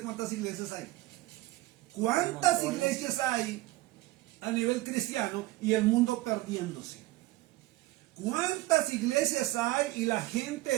cuántas iglesias hay. ¿Cuántas iglesias hay a nivel cristiano y el mundo perdiéndose? ¿Cuántas iglesias hay y la gente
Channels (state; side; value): quieter; left; 18.5 dB